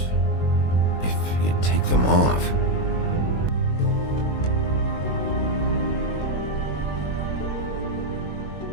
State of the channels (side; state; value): right; late; 21 ms